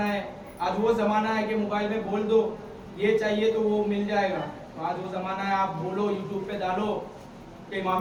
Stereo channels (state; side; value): identical; both; correlation 1.00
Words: है, आज वो जमाना है कि मोबाइल में बोल दो ये चाहिए तो वो मिल जाएगा। तो आज वो जमाना है, आप बोलो यूट्यूब पे डालो कि